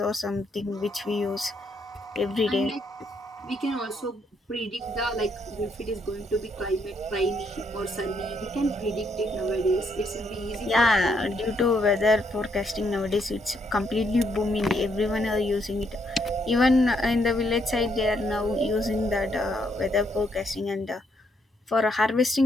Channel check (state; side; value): normal; both; correlation 0.74